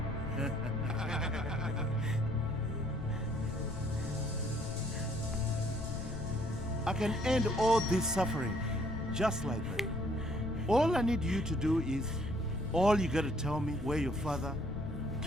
I can end all this suffering just like that. All I need you to do is, all you gotta tell me where your father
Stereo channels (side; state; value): left; noise; rumble, 9 dB below the sound